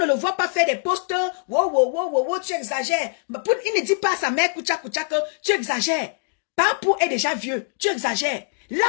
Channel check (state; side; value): silent; right; digital silence